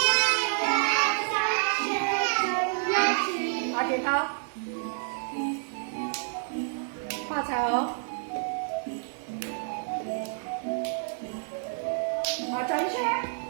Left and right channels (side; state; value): left; silent; digital silence